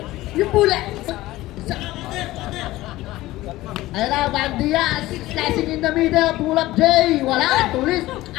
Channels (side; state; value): right; quieter; 17.3 dB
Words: Yung pula. Ayun na, Bandias. Slicing in the middle. Pull up J. Wala. Tulis.